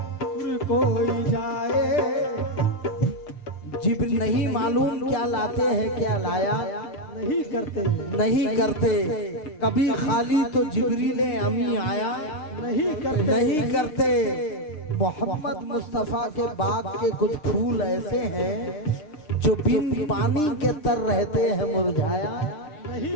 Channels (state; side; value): late; right; 6.6 ms